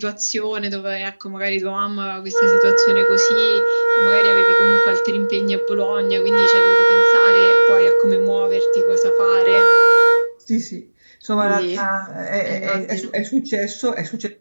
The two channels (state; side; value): inverted; both; correlation -1.00